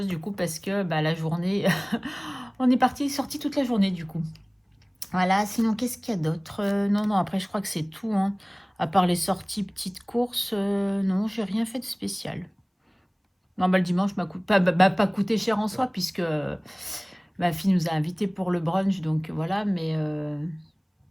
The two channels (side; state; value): both; identical; correlation 1.00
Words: du coup parce que bah, la journée, on est sorti toute la journée du coup. Voilà, sinon qu'est-ce qu'il y a d'autre? Non, non, après je crois que c'est tout, hein. À part les sorties petites courses, non, j'ai rien fait de spécial. Non, bah le dimanche m'a pas coûté cher en soi, puisque ma fille nous a invités pour le brunch, donc voilà, mais